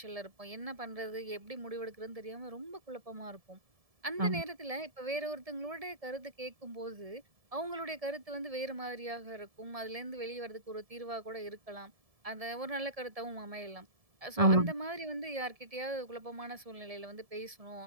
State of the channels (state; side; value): late; left; 1.7 ms